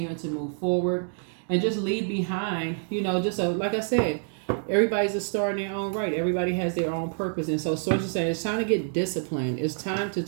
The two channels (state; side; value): silent; left; 60 dB below the other